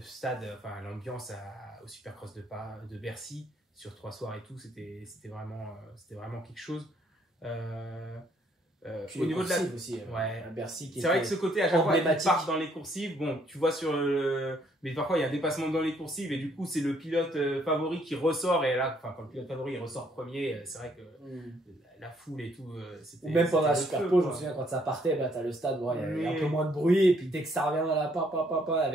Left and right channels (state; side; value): normal; both; correlation 0.67